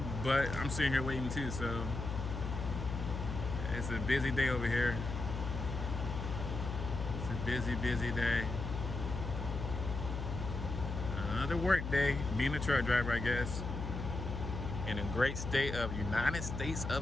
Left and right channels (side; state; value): left; noise; hum, 5 dB below the sound